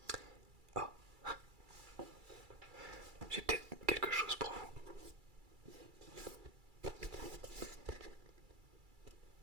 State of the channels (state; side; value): late; left; 2.3 ms